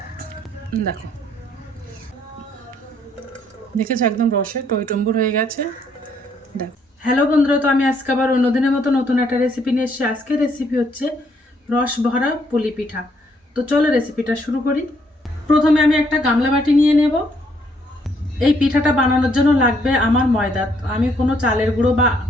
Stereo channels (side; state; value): both; normal; correlation 0.69